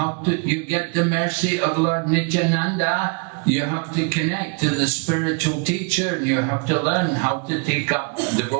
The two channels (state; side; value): quieter; left; 34.1 dB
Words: do you get the mercy of Lord Nityananda? You have to connect to the spiritual teacher and you have to learn how to take up